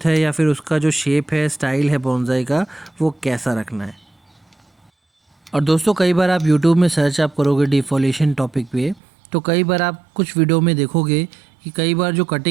है या फिर उसका जो शेप है, स्टाइल है बोनसाई का, वो कैसा रखना है। और दोस्तों कई बार आप YouTube में सर्च आप करोगे डिफोलिएशन टॉपिक पे, तो कई बार आप कुछ वीडियो में देखोगे कि कई बार जो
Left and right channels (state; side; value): drops out; left; at 9.0 s